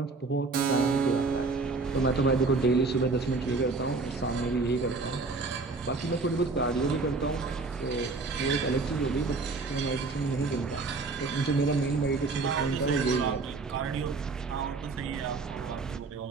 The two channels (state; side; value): quieter; left; 3.9 dB